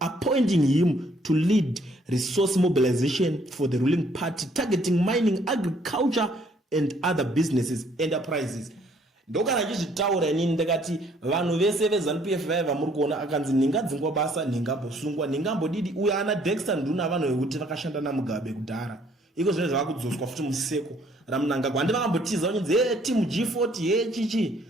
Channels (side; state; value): both; normal; correlation 0.63